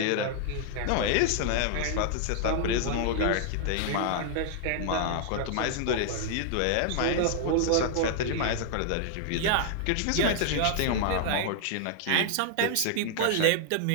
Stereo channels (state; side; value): different; both; correlation -0.01